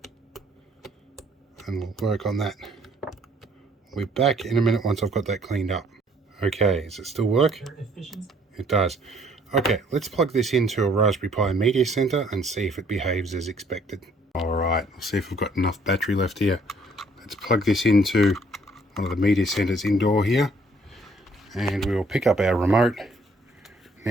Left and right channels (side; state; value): both; normal; correlation 0.62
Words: And we'll work on that. We'll be back in a minute once I've got that cleaned up. Okay, does it still work? It does. Okay, let's plug this into a Raspberry Pi Media Center and see if it behaves as expected. Alright, let's see if we've got enough battery left here. Let's plug this into one of the Media Centers indoor here. And we will pick up our remote.